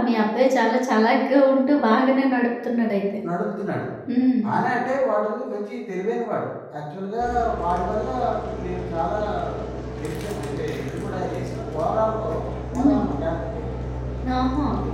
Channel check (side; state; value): both; identical; correlation 1.00